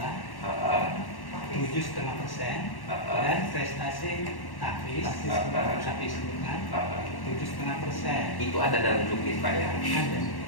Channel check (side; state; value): right; late; 1.1 ms